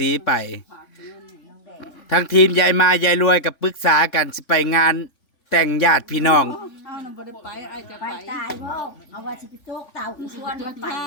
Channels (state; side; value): late; right; 3.5 ms